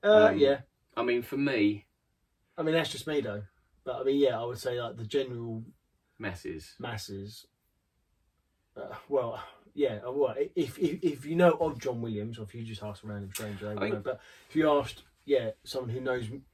Yeah. I mean, for me, I mean, that's just me though. But I mean, yeah, I would say like the general masses. Well, yeah. Well, if you know of John Williams, or if you just ask a random stranger, they will know. But if you asked, yeah, someone who knows,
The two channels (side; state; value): both; identical; correlation 1.00